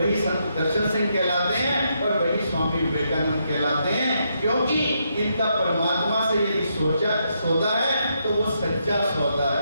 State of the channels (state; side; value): inverted; both; correlation -0.79